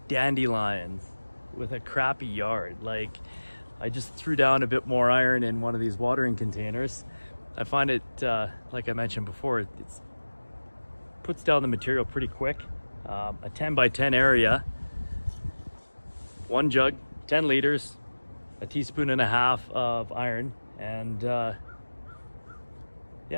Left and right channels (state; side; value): inverted; both; correlation -1.00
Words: dandelions with a crappy yard? Like, I just threw down a bit more iron in one of these watering containers. I find it, like I mentioned before, it puts down the material pretty quick. A 10 by 10 area, one jug, 10 liters, a teaspoon and a half of iron, and yeah,